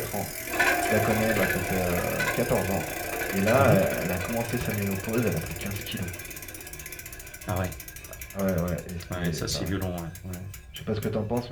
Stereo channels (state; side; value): identical; both; correlation 1.00